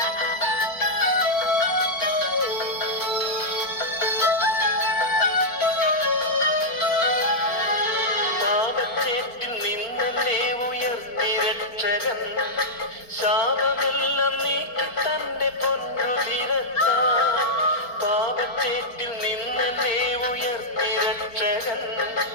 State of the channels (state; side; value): late; right; 4.4 ms